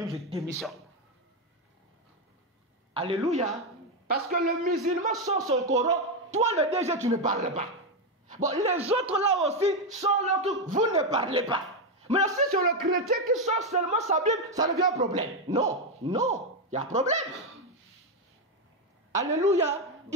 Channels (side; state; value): both; normal; correlation 0.06